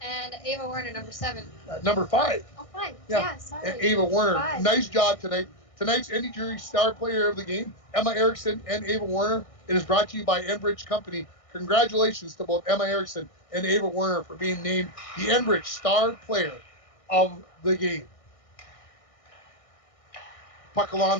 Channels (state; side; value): late; right; 1.6 ms